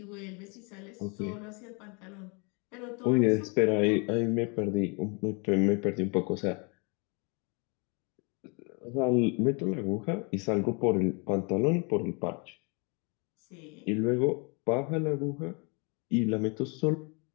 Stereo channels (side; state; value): right; quieter; 32.8 dB